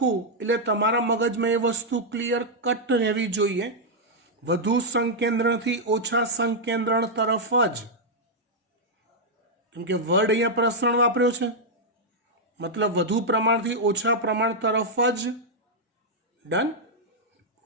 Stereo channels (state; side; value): normal; both; correlation -0.04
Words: એટલે તમારા મગજમાં એ વસ્તુ ક્લિયર કટ રહેવી જોઈએ, વધુ સંકેન્દ્રણથી ઓછા સંકેન્દ્રણ તરફ જ, કેમ કે વર્ડ અહીંયા પ્રસરણ વાપર્યો છે મતલબ વધુ પ્રમાણથી ઓછા પ્રમાણ તરફ જ। ડન?